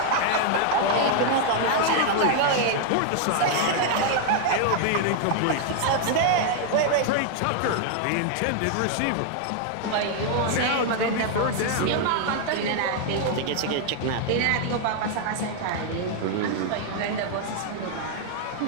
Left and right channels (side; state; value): both; different; correlation 0.00